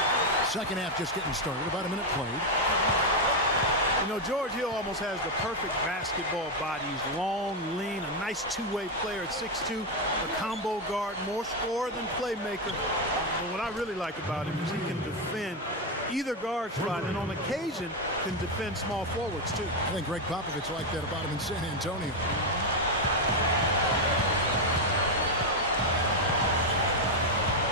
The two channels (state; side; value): normal; both; correlation 0.05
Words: Second half just getting started. About a minute played. You know, George Hill almost has the perfect basketball body. He's long, lean, a nice two-way player at 6'2", a combo guard, more scorer than playmaker. But what I really like about him is he can defend either guard spot, and on occasion can defend small forwards too. I think Greg Popovich liked that about him in San Antonio.